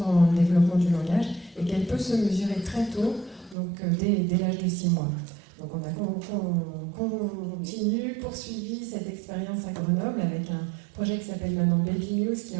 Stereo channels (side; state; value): left; drops out; at 3.6 s